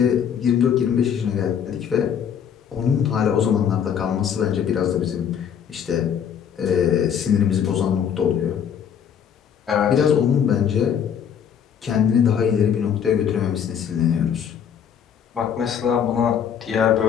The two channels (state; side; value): quieter; right; 8.2 dB